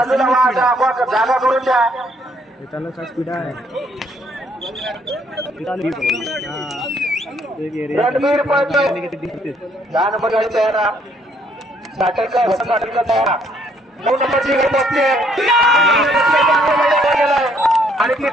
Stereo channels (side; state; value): both; normal; correlation 0.67